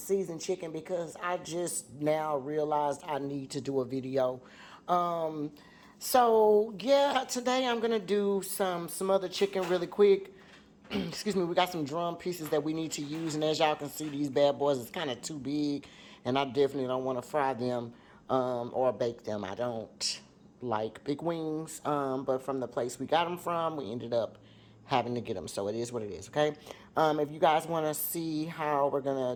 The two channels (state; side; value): identical; both; correlation 1.00